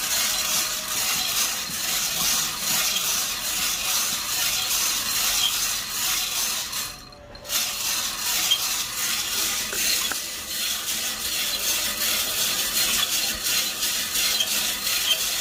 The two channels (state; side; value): identical; both; correlation 1.00